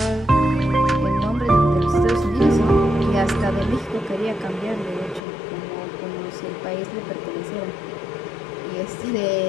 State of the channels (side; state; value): right; drops out; at 5.2 s